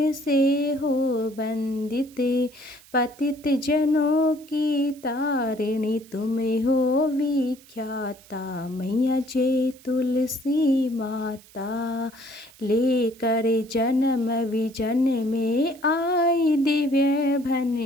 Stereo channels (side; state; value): right; noise; hiss, 24 dB below the sound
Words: से हो वंदित, पतित जनों की तारिणी तुम हो विख्याता मैया, जय तुलसी माता। लेकर जन्म विजन में आई दिव्य